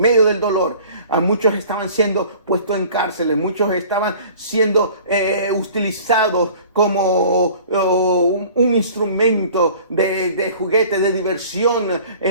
del dolor. A muchos estaban siendo puestos en cárceles, muchos estaban siendo utilizados como un instrumento de juguete, de diversión,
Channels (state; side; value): inverted; both; correlation -0.47